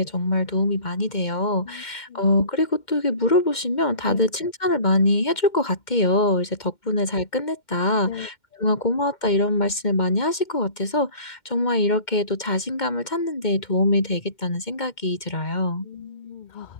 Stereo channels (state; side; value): late; right; 2.1 ms